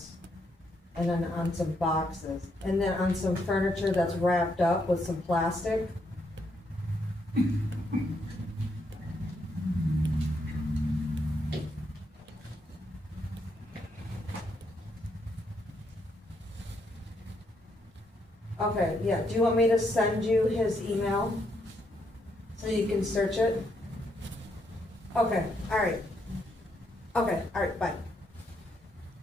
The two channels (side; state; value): both; normal; correlation 0.76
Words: And then on some boxes, and then on some furniture that's wrapped up with some plastic. Okay, yeah, do you want me to send you his email so you can search it? Okay, alright. Okay, alright, bye.